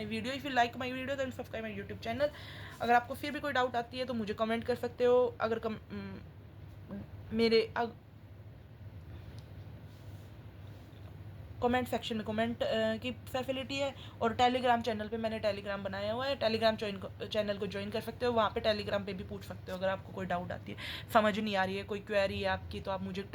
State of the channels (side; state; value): both; identical; correlation 1.00